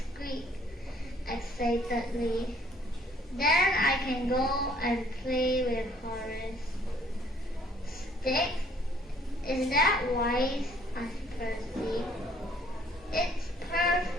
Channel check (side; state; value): both; normal; correlation 0.60